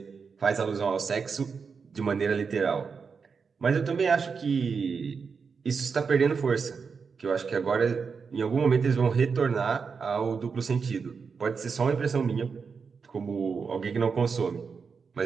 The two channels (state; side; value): quieter; left; 5.5 dB